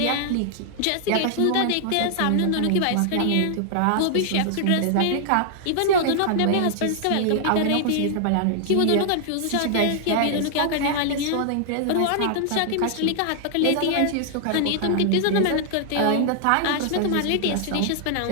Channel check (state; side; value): different; both; correlation -0.01